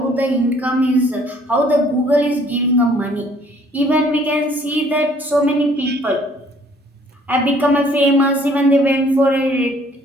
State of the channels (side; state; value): both; normal; correlation 0.59